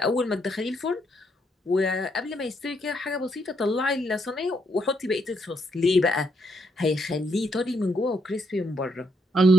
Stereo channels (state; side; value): normal; both; correlation 0.75